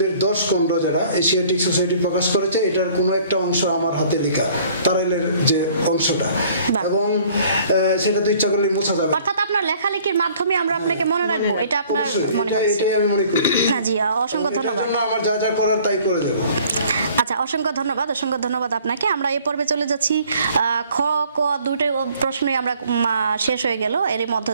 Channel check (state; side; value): inverted; both; correlation -0.55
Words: 10 খণ্ড যারা এশিয়াটিক সোসাইটি প্রকাশ করেছে, এটার কোনো একটা অংশ আমার হাতে লেখা, তারাইলের যে অংশটা, এবং সেটা তো ইচ্ছা করলে মোছা যাবে। অর্থাৎ আপনার লেখালেখির মাধ্যমে আমরা আপনাকে মনে রাখবো, এটা আপনার মনে হচ্ছে? এটাই আমি মনে করি। না জি, অসংখ্য ধন্যবাদ। আমার যা যা করার তাই করে দেব। আচ্ছা, অসংখ্য ধন্যবাদ আপনাকে। আমরা এই পর্বে চলে যাচ্ছি খ ক দুটোই প্রশ্নই আমরা শেষ হয়ে গেল এর মধ্য